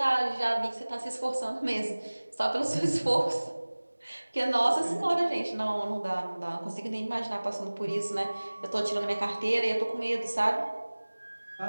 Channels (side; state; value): both; inverted; correlation -1.00